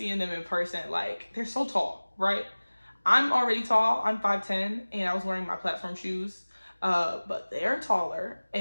them in person. Like, they're so tall, right? I'm already tall. I'm 5'10", and I was wearing my platform shoes. But they're taller,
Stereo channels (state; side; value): inverted; both; correlation -1.00